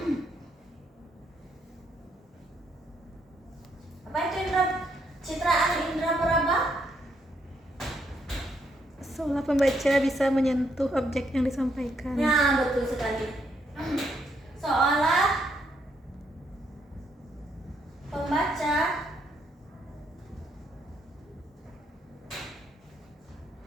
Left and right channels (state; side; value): normal; both; correlation 0.74